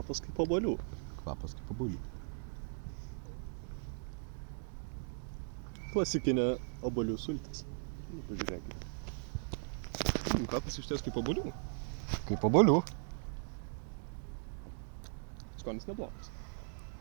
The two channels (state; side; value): silent; left; digital silence